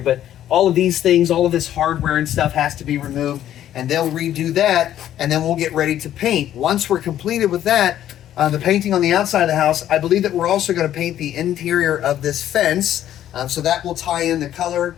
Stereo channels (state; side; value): quieter; right; 11.6 dB